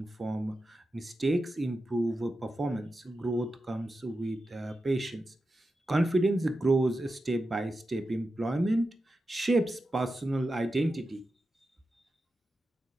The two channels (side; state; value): both; normal; correlation 0.90